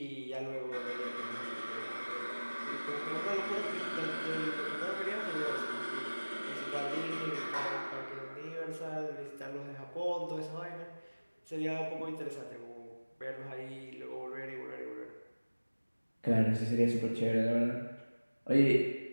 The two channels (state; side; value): inverted; both; correlation -1.00